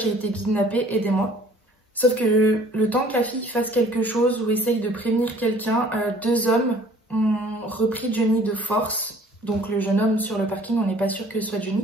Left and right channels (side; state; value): both; normal; correlation 0.54